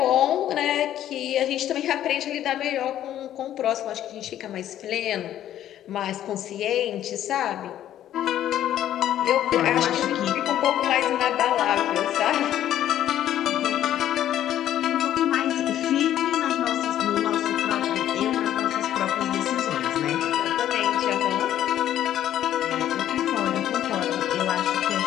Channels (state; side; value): quieter; right; 11.7 dB